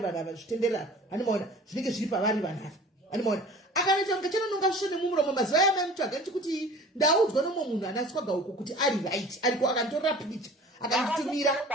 ava zvitenderera hanimaona zvinenge zviri pavari vanhu ava hanimaona akanoita kunge chenononga svisvo nemumuromo mazuva yamamutsvaga ndichikuti ndaudzwa nomwe munhu ana swaga uko kuti ari right ariko akanditorera picha akanditumira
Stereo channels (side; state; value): both; normal; correlation 0.44